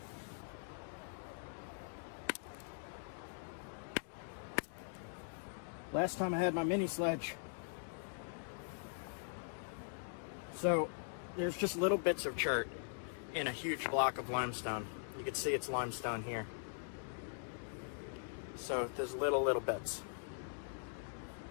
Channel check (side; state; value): right; silent; digital silence